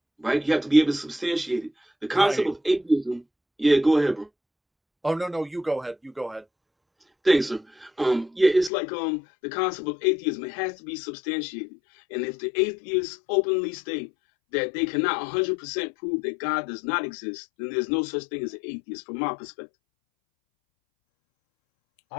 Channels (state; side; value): drops out; right; at 8.7 s